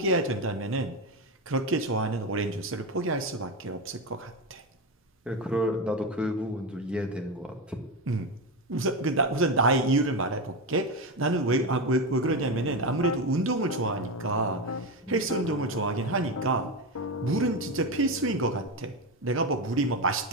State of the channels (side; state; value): both; normal; correlation 0.15